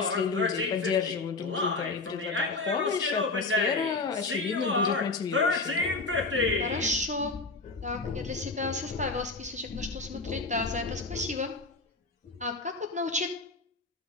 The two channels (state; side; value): quieter; right; 3.6 dB